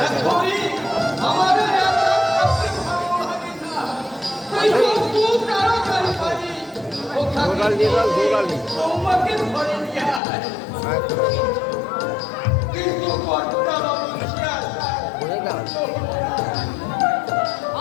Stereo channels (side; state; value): right; drops out; at 10.2 s